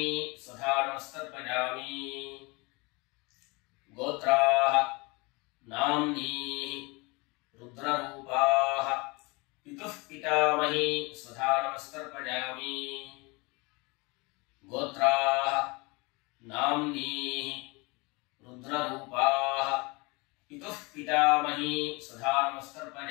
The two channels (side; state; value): right; quieter; 26.6 dB